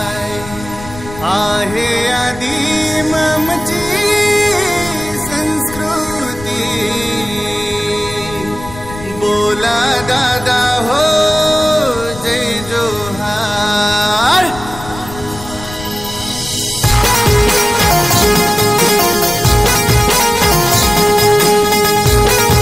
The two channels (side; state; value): left; noise; rumble, 14 dB below the sound